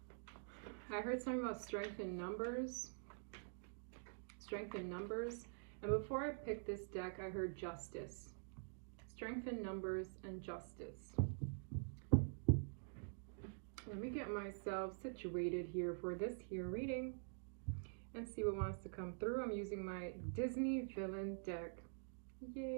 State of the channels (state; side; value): silent; left; digital silence